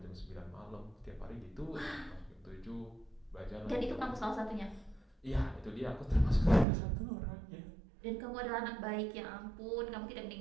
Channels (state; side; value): drops out; left; at 6.7 s